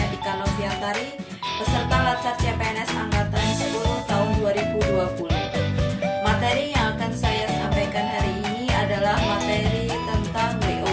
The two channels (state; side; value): identical; both; correlation 1.00